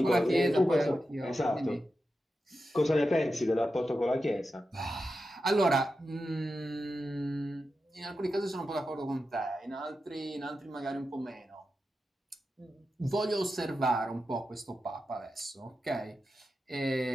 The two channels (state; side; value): normal; both; correlation 0.90